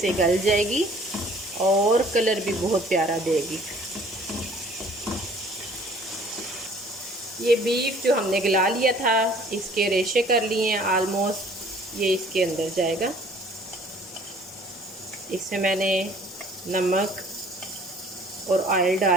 गल जाएगी और कलर भी बहुत प्यारा देगी। ये बीफ जो हमने गला लिया था, इसके रेशे कर लिए हैं आलमोस्ट। ये इसके अंदर जाएगा। इसमें मैंने नमक और ऑयल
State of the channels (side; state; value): both; normal; correlation 0.54